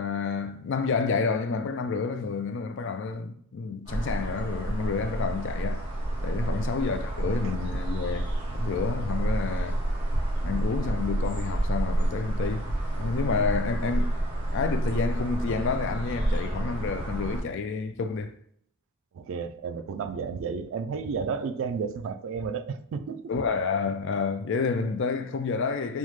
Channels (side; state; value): both; normal; correlation 0.44